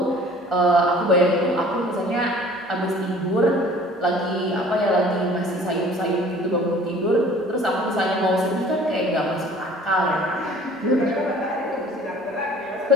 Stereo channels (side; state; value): both; normal; correlation 0.50